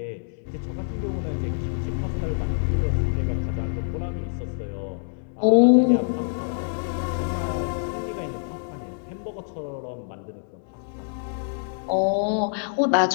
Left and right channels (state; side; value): silent; right; digital silence